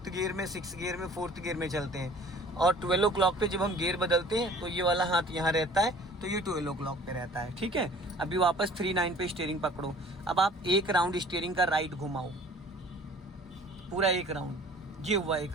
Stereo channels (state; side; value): normal; both; correlation 0.49